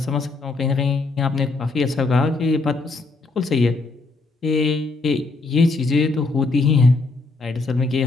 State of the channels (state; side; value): quieter; right; 3.5 dB